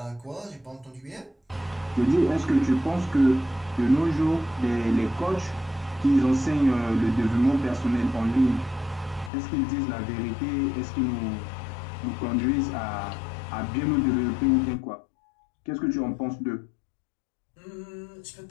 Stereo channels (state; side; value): drops out; right; at 9.3 s